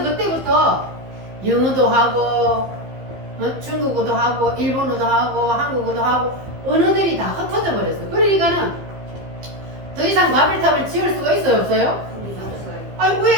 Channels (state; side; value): late; left; 15 ms